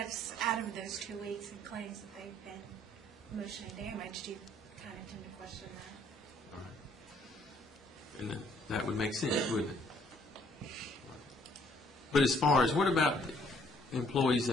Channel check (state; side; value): normal; both; correlation 0.64